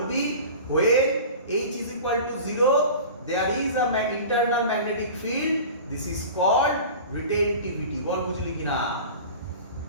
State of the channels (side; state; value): both; inverted; correlation -0.36